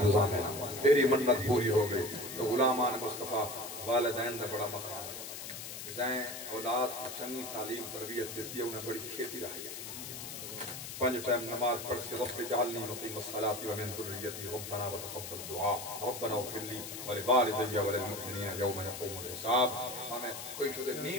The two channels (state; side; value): noise; left; hiss, 8 dB below the sound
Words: زامنہ تیری منت پوری ہو گئی تو غلامان مصطفیٰ والدین دا بڑا مقام ہے دائیں اولاد کو چنگی تعلیم تربیت دیتی ہے انہیں بڑی کھیتی رہی ہے 5 ٹائم نماز پڑھ کے رب جعلنی مقیم الصلاة ومن ذریتی ربنا وتقبل دعا ربنا اغفر لی ولوالدی وللمؤمنین یوم یقوم الحساب ہمیں کوئی شدہ